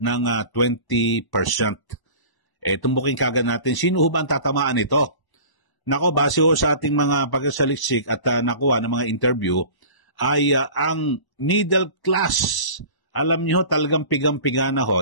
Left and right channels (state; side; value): late; right; 1.0 ms